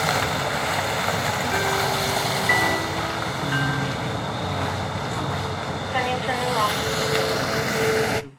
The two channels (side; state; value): both; identical; correlation 1.00